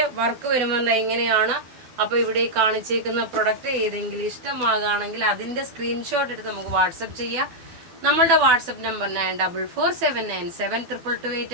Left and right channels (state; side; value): late; left; 12 ms